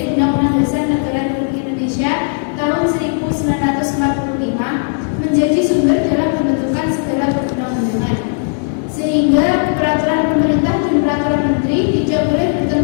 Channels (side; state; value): right; silent; digital silence